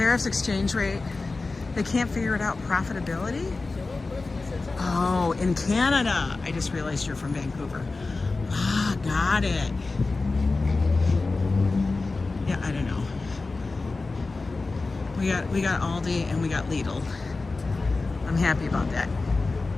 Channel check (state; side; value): quieter; right; 3.6 dB